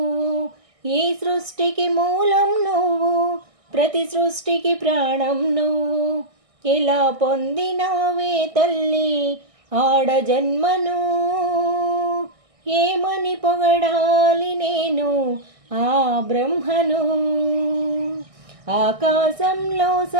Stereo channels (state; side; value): late; left; 1.6 ms